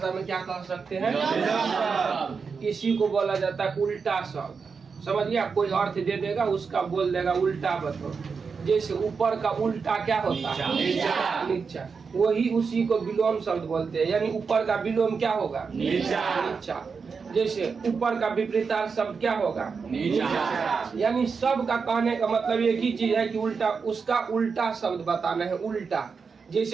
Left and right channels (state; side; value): quieter; left; 5.4 dB